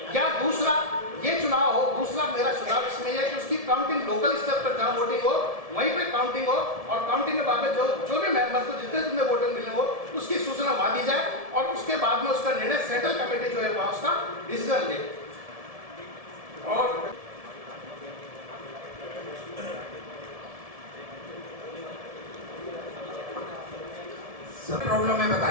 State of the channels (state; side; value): late; left; 1.7 ms